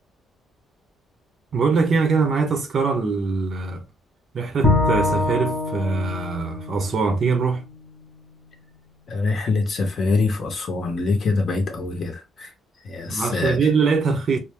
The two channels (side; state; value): both; normal; correlation 0.70